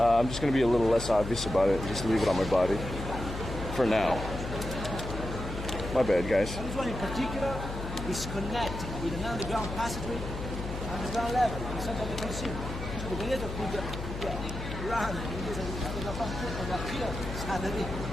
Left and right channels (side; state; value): left; noise; hum, 7 dB below the sound